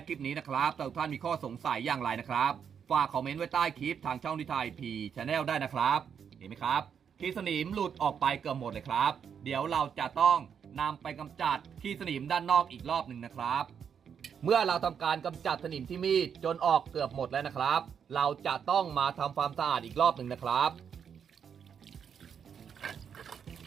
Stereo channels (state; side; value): quieter; left; 7.5 dB